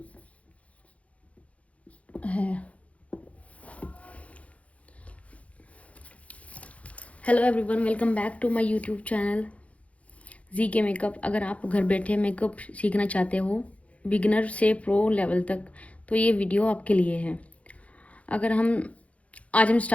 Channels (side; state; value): right; late; 0.065 ms